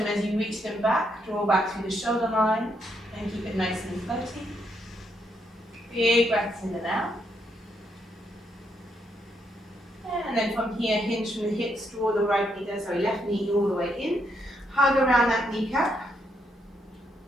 as you reach them back. Draw back through the shoulder line and keep it nice and floaty. Big breaths in and out. And then from here, hinge from the hips, draw the left knee all the way in. Hug around that kneecap.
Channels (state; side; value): normal; both; correlation 0.76